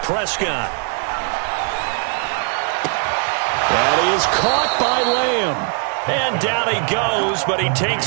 Prescott. That is caught by Lamb. And down he goes, but he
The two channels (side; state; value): left; quieter; 39.6 dB